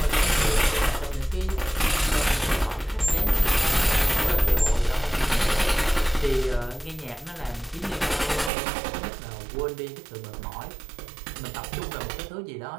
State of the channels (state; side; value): drops out; left; at 8.5 s